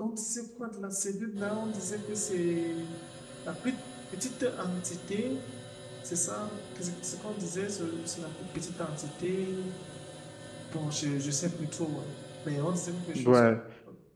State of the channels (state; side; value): identical; both; correlation 1.00